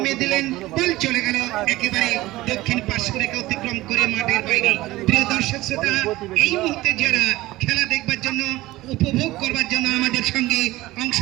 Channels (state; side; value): quieter; left; 18.1 dB